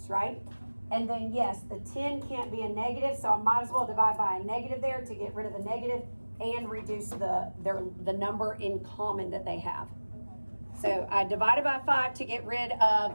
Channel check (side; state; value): both; inverted; correlation -1.00